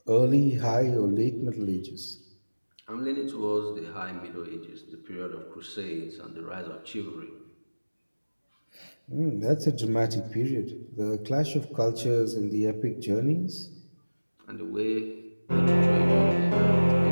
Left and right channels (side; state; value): both; inverted; correlation -1.00